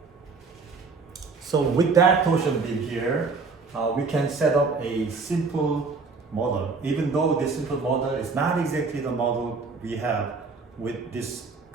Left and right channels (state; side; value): quieter; left; 4.4 dB